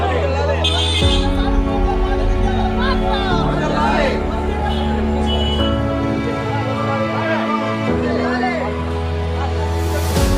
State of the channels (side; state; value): both; identical; correlation 1.00